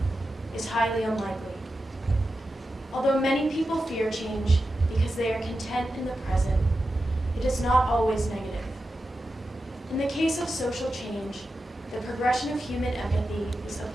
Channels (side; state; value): both; normal; correlation 0.91